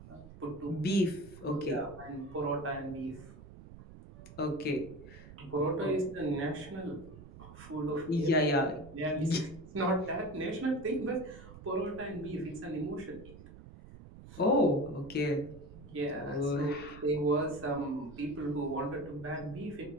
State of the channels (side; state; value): right; noise; rumble, 16 dB below the sound